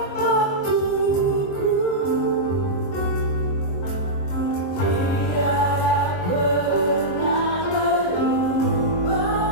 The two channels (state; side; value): late; right; 22 ms